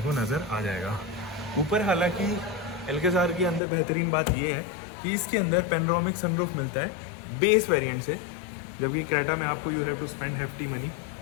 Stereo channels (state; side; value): drops out; right; at 3.6 s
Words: को नज़र आ जाएगा। ऊपर हालांकि एल्काजार के अंदर बेहतरीन बात यह है कि इसके अंदर पेनोरामिक सनरूफ मिलता है बेस वेरिएंट से, जबकि क्रेटा में आपको you have to spend hefty money